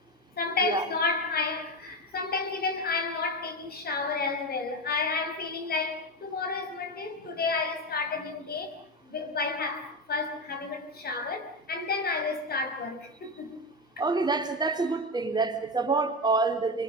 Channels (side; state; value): both; normal; correlation 0.16